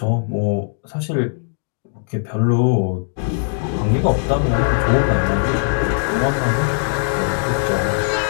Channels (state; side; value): silent; right; digital silence